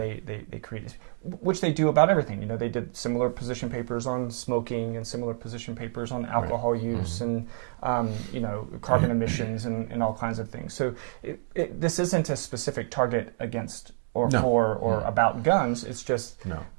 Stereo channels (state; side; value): silent; left; 59 dB below the other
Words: created, which they do about everything. You know, they did similar position papers on smoking and similar position papers on alcohol use and carbon emissions and all kinds of things. So this isn't a specific target against or about guns. It's just